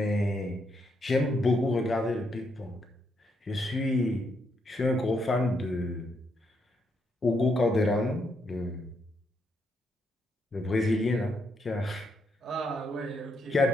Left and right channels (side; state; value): both; normal; correlation 0.78